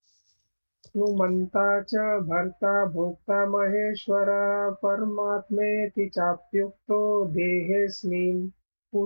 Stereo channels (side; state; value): both; inverted; correlation -1.00